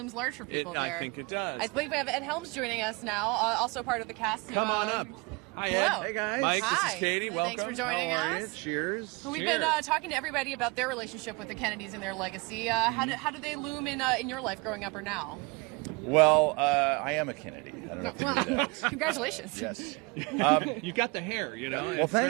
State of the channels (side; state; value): left; quieter; 27.9 dB